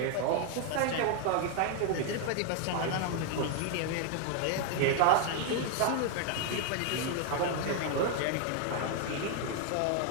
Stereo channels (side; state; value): both; different; correlation 0.01